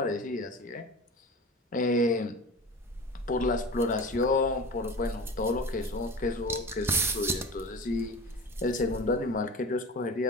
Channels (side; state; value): both; normal; correlation 0.34